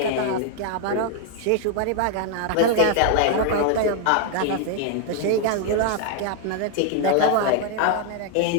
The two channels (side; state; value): both; different; correlation 0.00